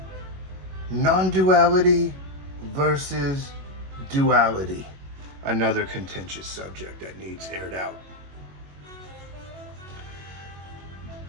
non-duality versus duality. Another contentious subject that needs aired out.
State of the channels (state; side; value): late; left; 21 ms